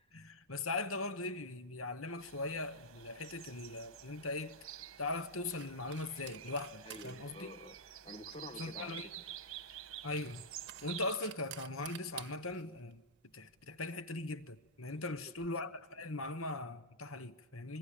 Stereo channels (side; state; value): both; normal; correlation -0.09